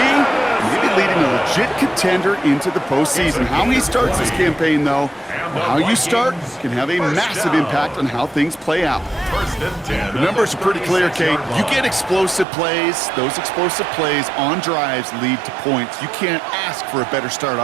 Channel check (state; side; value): drops out; left; at 12.5 s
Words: maybe leading a legit contender into the postseason. How he starts this campaign, though, or how you start, can have a massive impact on how things play out. The numbers are pretty clear, Kate. You get explosive plays. Those explosive plays on drives lead to points. You can't ask for a better start